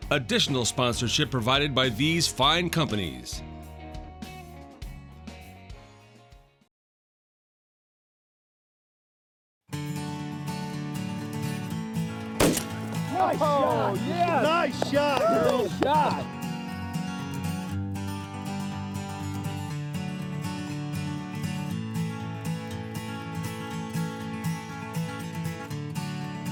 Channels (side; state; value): both; identical; correlation 1.00